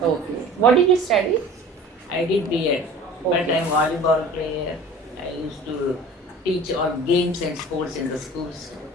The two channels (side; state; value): both; normal; correlation 0.43